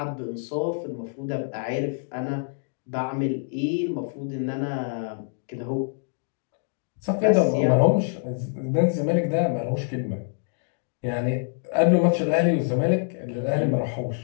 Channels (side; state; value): right; silent; digital silence